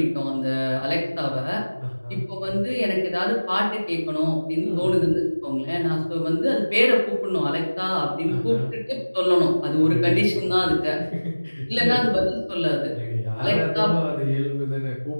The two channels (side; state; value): both; inverted; correlation -1.00